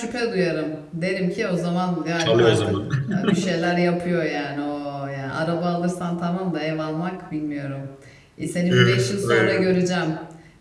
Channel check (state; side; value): identical; both; correlation 1.00